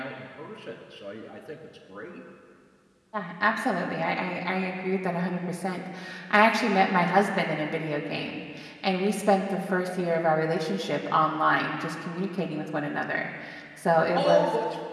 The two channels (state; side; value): identical; both; correlation 1.00